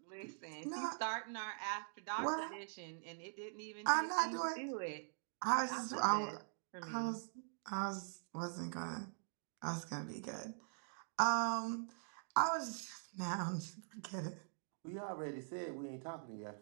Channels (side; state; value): left; silent; digital silence